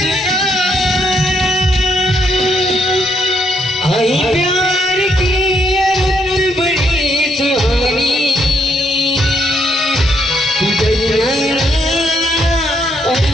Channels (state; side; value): normal; both; correlation 0.74